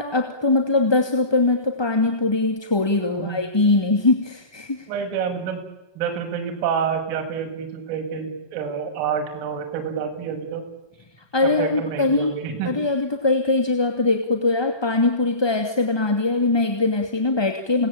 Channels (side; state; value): right; late; 1.2 ms